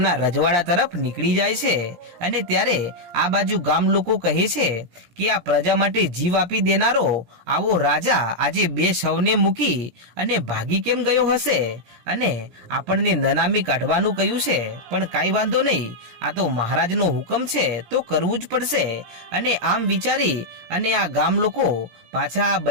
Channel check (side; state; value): left; late; 17 ms